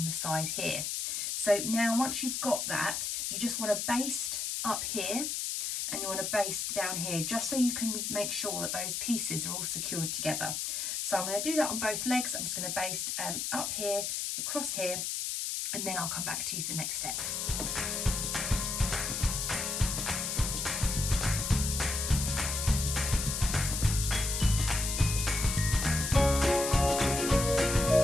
the side here. So now once you've got that, you just want to baste up here and you want to baste down here, just so you can make sure that those pieces are all secured together. So I'm going to do that on both legs. I'm just going to baste up here, across here, and then I'll come back to you for the next step.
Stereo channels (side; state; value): left; noise; hiss, 2 dB below the sound